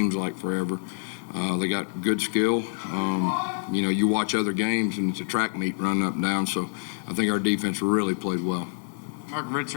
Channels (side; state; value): right; silent; digital silence